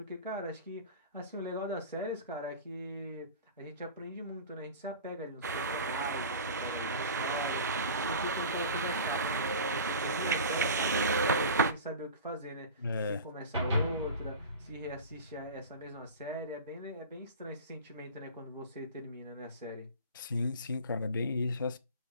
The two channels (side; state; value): both; inverted; correlation -0.34